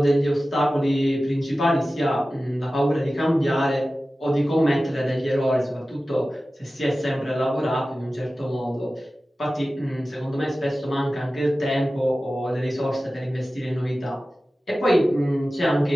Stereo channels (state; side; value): normal; both; correlation 0.95